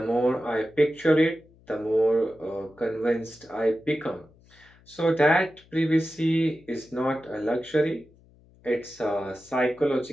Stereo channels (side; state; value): left; noise; hum, 28 dB below the sound